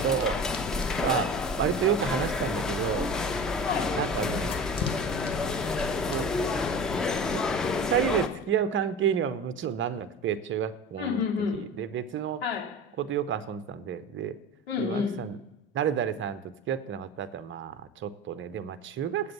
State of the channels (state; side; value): normal; both; correlation 0.34